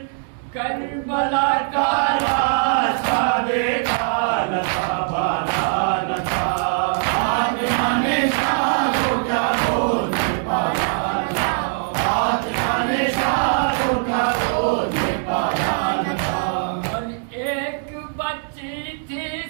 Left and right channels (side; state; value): left; silent; digital silence